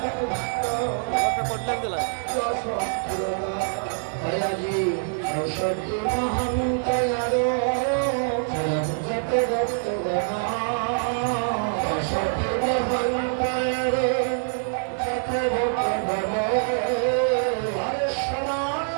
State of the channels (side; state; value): left; silent; digital silence